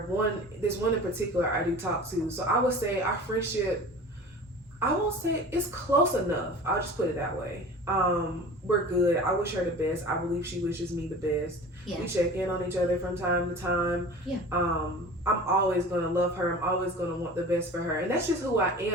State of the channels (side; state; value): both; normal; correlation 0.39